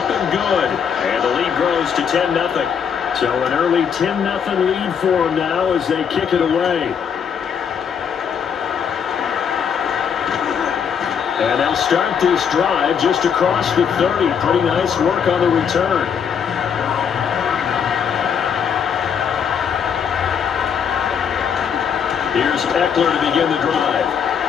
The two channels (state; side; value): quieter; right; 7.4 dB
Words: and good. And the lead grows to 10-0. So an early 10-0 lead for them now as they kick it away. And they'll start this drive just across the 30. Pretty nice work on the return. Here's Eckler to begin the drive.